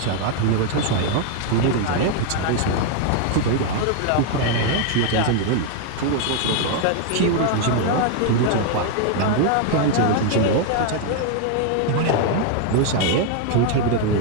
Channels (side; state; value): both; different; correlation 0.00